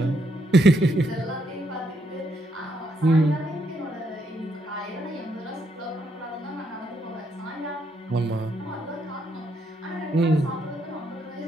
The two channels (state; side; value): normal; both; correlation 0.75